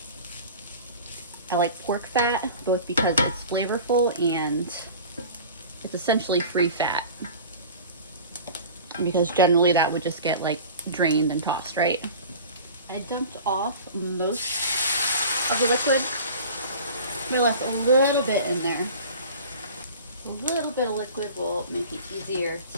I like pork fat both because it's flavorful and it's essentially free fat, because generally that would just get like drained and tossed, right? I dumped off most of the liquid. I left a little bit in there. A little bit of liquid will make it easier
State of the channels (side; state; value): both; inverted; correlation -0.39